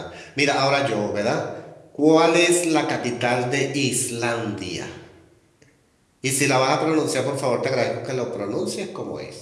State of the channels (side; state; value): both; identical; correlation 1.00